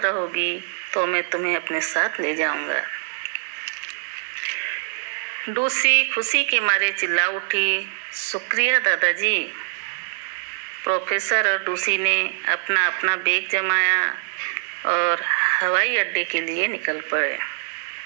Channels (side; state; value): left; silent; 63 dB below the other